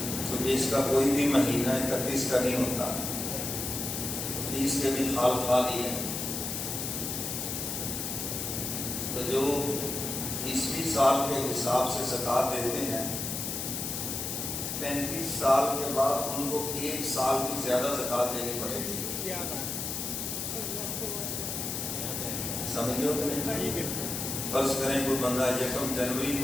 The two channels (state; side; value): noise; left; hiss, 3 dB below the sound